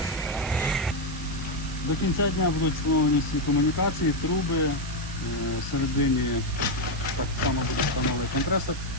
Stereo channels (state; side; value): noise; right; hiss, 13 dB below the sound